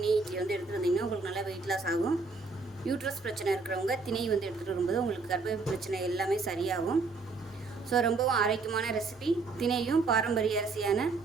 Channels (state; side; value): quieter; left; 4.0 dB